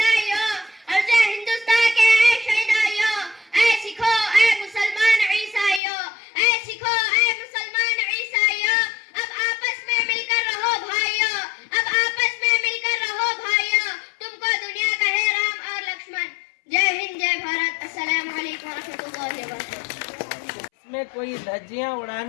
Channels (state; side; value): drops out; right; at 5.8 s